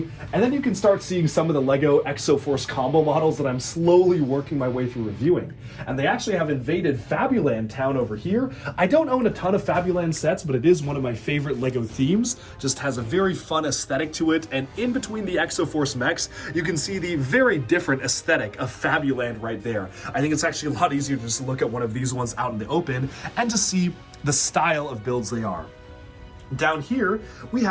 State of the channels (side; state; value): both; identical; correlation 1.00